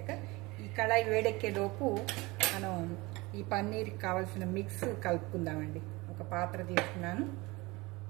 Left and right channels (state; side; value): quieter; left; 23.0 dB